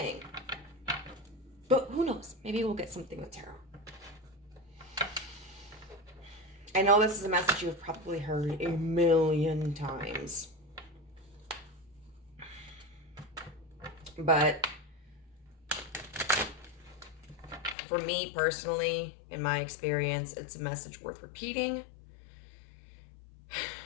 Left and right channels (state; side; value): drops out; right; at 17.8 s